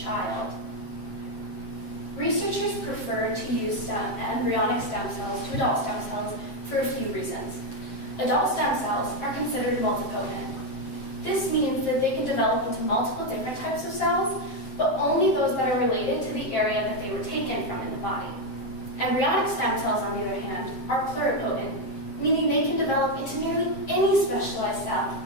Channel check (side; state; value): right; late; 7.6 ms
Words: Researchers prefer to use embryonic stem cells to adult stem cells for a few reasons. Adult stem cells are considered multipotent. This means that they can develop into multiple different types of cells, but only those that are related to the area that they were taken from in the body. Embryonic stem cells, on the other hand, are pluripotent, meaning they can develop into nearly any specialized cell